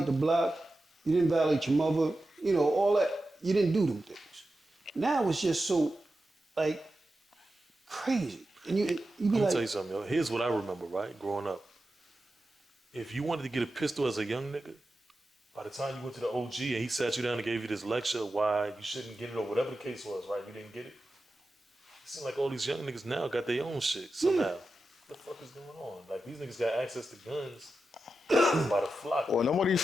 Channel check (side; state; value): both; normal; correlation 0.91